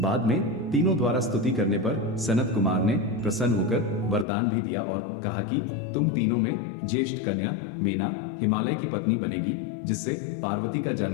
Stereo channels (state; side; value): drops out; right; at 4.2 s